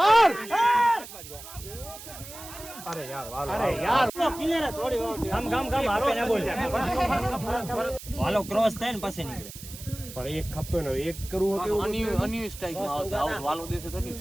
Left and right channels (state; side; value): noise; right; hiss, 14 dB below the sound